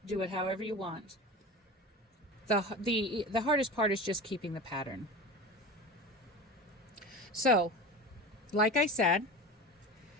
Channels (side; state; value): both; normal; correlation 0.31